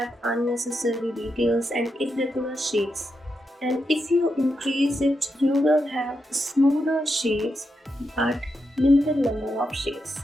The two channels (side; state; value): both; normal; correlation 0.85